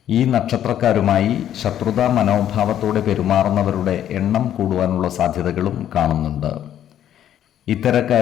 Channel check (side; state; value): right; quieter; 10.8 dB